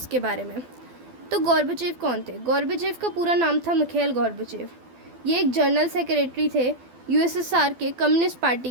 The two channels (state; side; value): late; left; 12 ms